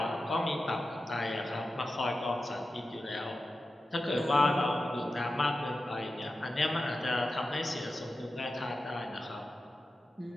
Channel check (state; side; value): normal; both; correlation 0.92